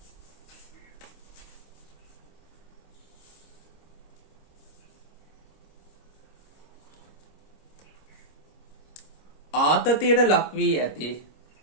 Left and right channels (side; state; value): right; late; 26 ms